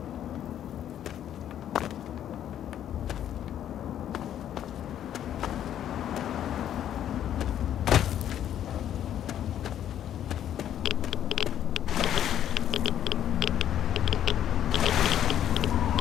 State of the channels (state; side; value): quieter; right; 10.6 dB